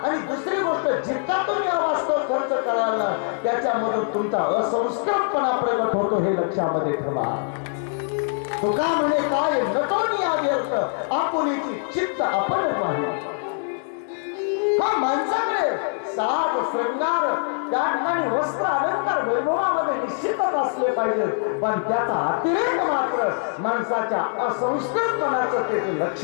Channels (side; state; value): right; silent; 63 dB below the other